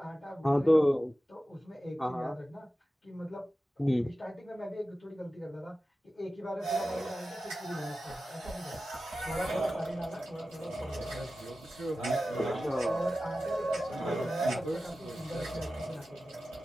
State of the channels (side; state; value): both; normal; correlation 0.94